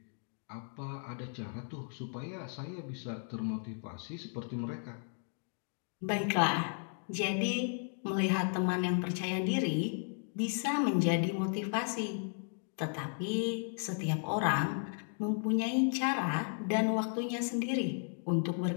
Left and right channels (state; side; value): silent; right; 55 dB below the other